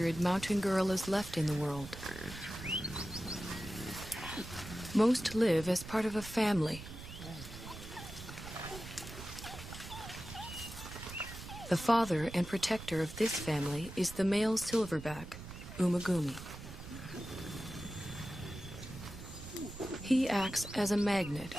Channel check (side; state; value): right; noise; rumble, 12 dB below the sound